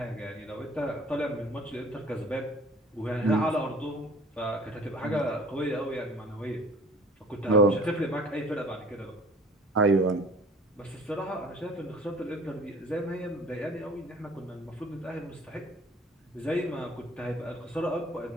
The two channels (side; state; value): both; normal; correlation 0.49